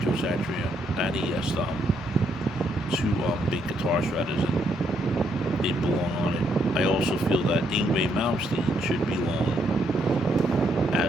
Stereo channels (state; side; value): normal; both; correlation 0.74